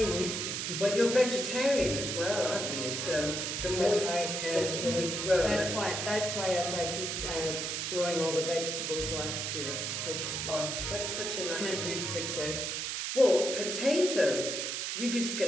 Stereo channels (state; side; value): noise; right; hiss, 2 dB below the sound